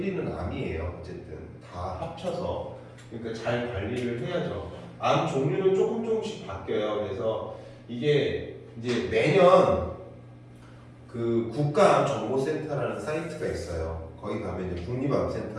암이에요. 어쨌든 다 합쳐서. 그러니까 잘 관리를 해야죠. 암 종류는 조금씩 바뀌어요. 그래서 이게 이제 매년 그 국가암정보센터라는 사이트가 있어요. 거기 가면 이제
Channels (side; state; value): both; identical; correlation 1.00